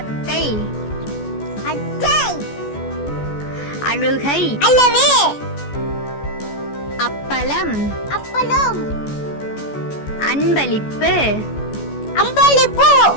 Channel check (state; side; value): late; right; 14 ms